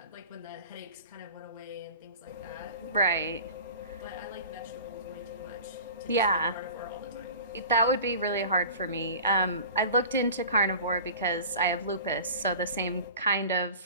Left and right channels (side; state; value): both; inverted; correlation -0.39